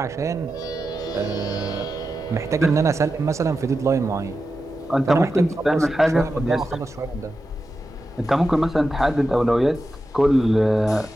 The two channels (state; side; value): normal; both; correlation 0.90